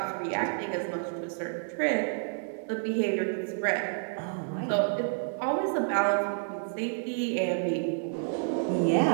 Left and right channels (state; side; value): silent; left; digital silence